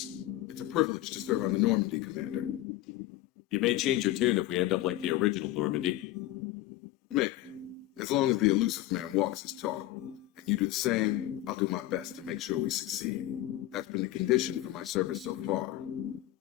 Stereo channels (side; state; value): right; quieter; 15.2 dB